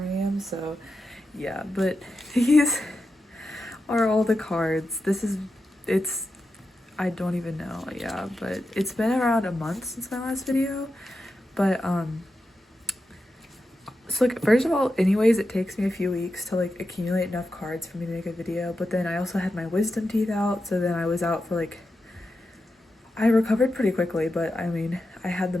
I am, so yeah. But these are all the cards. I don't even know, yeah. But it's been around a month since my last video. But so like, first of all, anyways, it takes me a few weeks to like accumulate enough cards for me to make a video. But then I also had my wisdom teeth out, so then I was out for like, I recovered pretty quickly, but I mean, I had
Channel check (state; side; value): normal; both; correlation 0.89